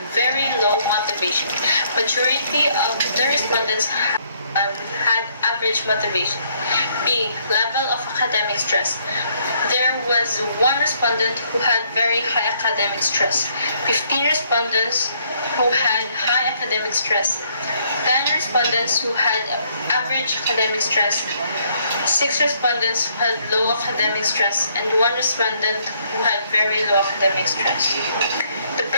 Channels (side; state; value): both; inverted; correlation -0.68